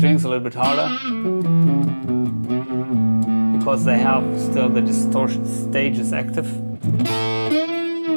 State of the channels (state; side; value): inverted; both; correlation -1.00